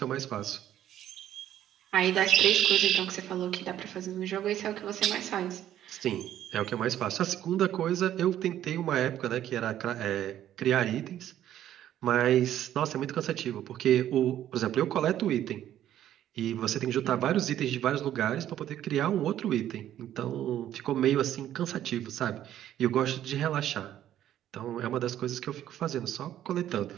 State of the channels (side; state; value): left; quieter; 11.7 dB